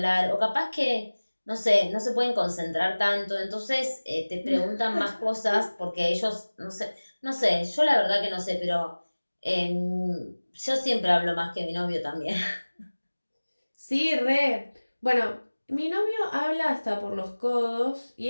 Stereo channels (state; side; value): inverted; both; correlation -1.00